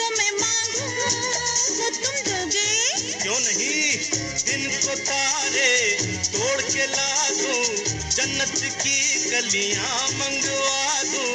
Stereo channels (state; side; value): identical; both; correlation 1.00